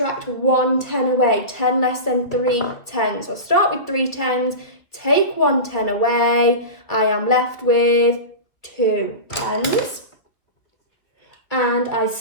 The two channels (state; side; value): late; right; 2.6 ms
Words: 1 10 away, 10 less than 3 tens. So I'll start with 3 tens, take 1 10 away, I am left with 2 tens. And I